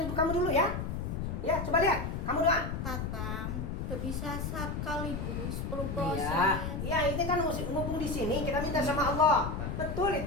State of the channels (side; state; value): left; noise; rumble, 4 dB below the sound